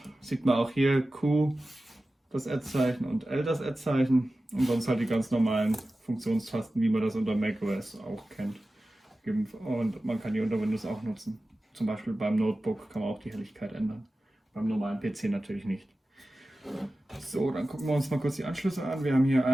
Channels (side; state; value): both; normal; correlation 0.95